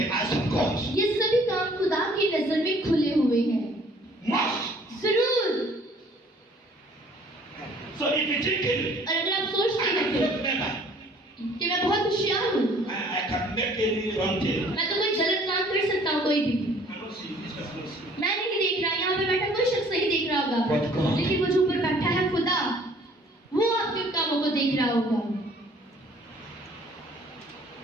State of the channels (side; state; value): both; normal; correlation 0.56